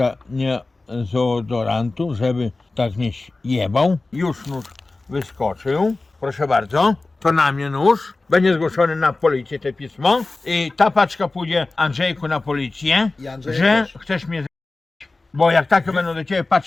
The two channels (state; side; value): quieter; right; 3.3 dB